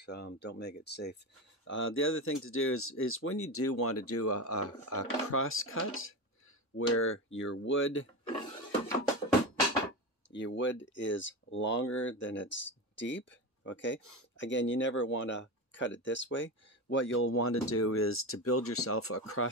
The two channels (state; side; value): late; left; 3.5 ms